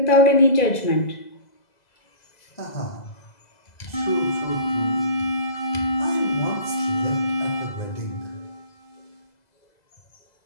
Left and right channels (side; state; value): right; late; 2.0 ms